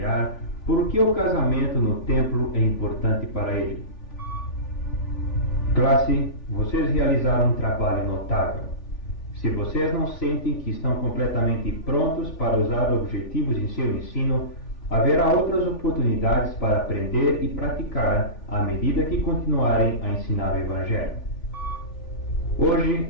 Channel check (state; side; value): late; right; 3.4 ms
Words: por que o casamento no templo é importante para ele. Classe, vocês realizaram um trabalho notável. Se vocês não sentem que estão completamente prontos para usar objetivos em seu ensino, haverá outras oportunidades para aprender e praticar à medida que continuarem a ensinar o Evangelho. Hoje